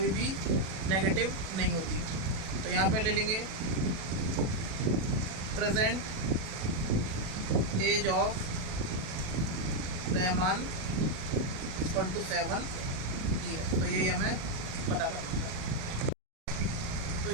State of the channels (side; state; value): left; late; 37 ms